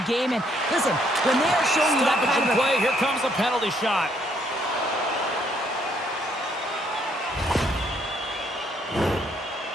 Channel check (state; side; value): normal; both; correlation 0.69